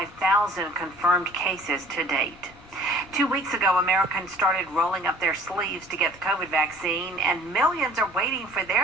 confirmed cases to date. 2 weeks ago, Americans started rolling up their sleeves to get the COVID vaccine, and millions are waiting for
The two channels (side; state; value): left; noise; rumble, 25 dB below the sound